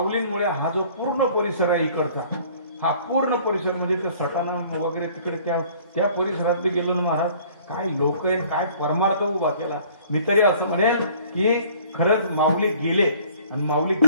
हा जो पूर्ण परिसर आहे इकडचा, हा पूर्ण परिसर म्हणजे त्या सटाणा वगैरे तिकडे त्या परिसरात गेलो ना महाराज, काय लोक आहे, काय परमार्थ उभा केला. मी तरी असं म्हणेन की खरंच माऊली गेले आणि माऊली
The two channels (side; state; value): both; inverted; correlation -0.54